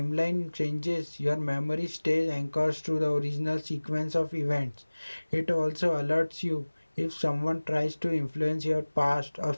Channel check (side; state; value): both; inverted; correlation -1.00